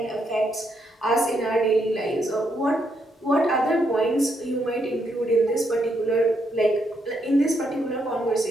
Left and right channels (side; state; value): both; normal; correlation 0.77